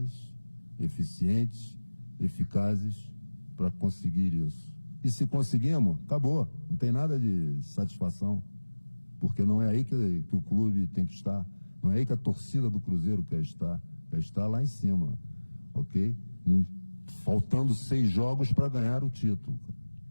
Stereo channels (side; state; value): both; inverted; correlation -1.00